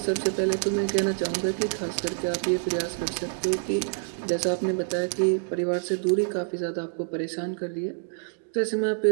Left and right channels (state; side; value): silent; left; digital silence